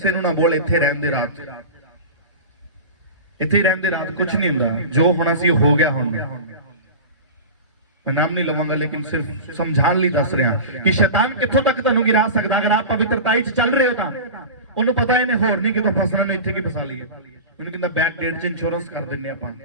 ਨੂੰ ਨਾ ਬੋਲ, ਇੱਥੇ ਰਹਿਣ ਦੇ ਰਾਤ, ਇੱਥੇ ਰਹਿਣ ਦੇ ਰਾਤ, ਕੁਝ ਨਹੀਂ ਹੁੰਦਾ, ਜੋ ਹੋਣਾ ਸੀ ਹੋ ਗਿਆ। ਹੁਣ ਮੈਂ ਨਾਮ ਨਹੀਂ ਲਵਾਂਗਾ ਲੇਕਿਨ ਸਿਰਫ ਸਮਝਾਉਣ ਲਈ ਦੱਸ ਰਿਹਾ ਕਿ ਸ਼ੈਤਾਨ ਕਿੱਥੋਂ ਤੱਕ ਤੁਹਾਨੂੰ ਗਿਰਾ ਸਕਦਾ। ਅਗਰ ਆਪ ਪਵਿੱਤਰਤਾਈ 'ਚ ਚੱਲ ਰਹੇ ਹੋ ਤਾਂ ਉਹਨੂੰ ਪਤਾ ਇਹਨੇ ਹੋਰ ਨਹੀਂ ਕਿਤੋਂ ਫਸਣਾ, ਨੇ ਇੱਥੇ ਕੀ ਫਸਾ ਲਈਏ। ਉਹਨੂੰ ਕਹਿੰਦਾ ਬੈਕ ਡੇਟ 'ਚ ਇੰਸ਼ੋਰੈਂਸ ਕਰ ਦਿੰਨੇ ਆਪਾਂ,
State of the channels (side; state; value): both; inverted; correlation -0.30